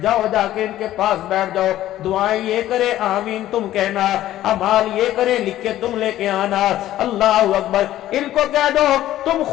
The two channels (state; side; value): quieter; right; 13.6 dB